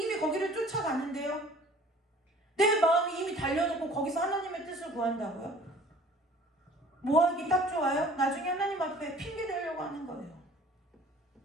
거기를 쫓아가는데요, 내 마음이 이미 달려놓고 거기서 하나님의 뜻을 구한다고요? 뭐하기 딱 좋아요? 나중에 하나님 앞에 핑계 대려고 하는 거예요.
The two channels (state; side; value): normal; both; correlation 0.50